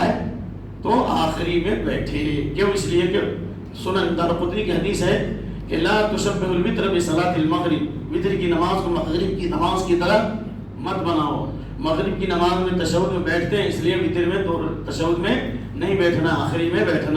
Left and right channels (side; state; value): both; identical; correlation 1.00